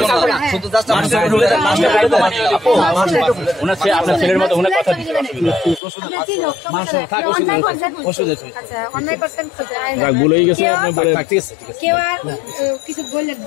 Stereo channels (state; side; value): drops out; right; at 5.8 s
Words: আপনার ছেলের মতো ওনার কথা বলেই গেছে কেউ আর কিছু বললেন